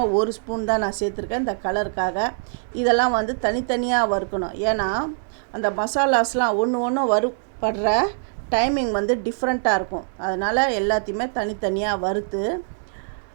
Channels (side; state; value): left; silent; digital silence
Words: ஒரு ஸ்பூன் தான் நான் சேர்த்துருக்கேன் இந்த கலருக்காக. இதெல்லாம் வந்து தனித்தனியாக வறுக்கணும். ஏன்னா அந்த மசாலாஸ்லாம் ஒன்று வறுப்படுற டைமிங் வந்து டிஃப்ரெண்ட்டாக இருக்கும். அதனால் எல்லாத்தையுமே தனித்தனியாக வறுத்து